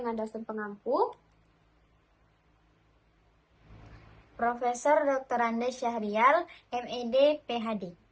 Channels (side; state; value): both; identical; correlation 1.00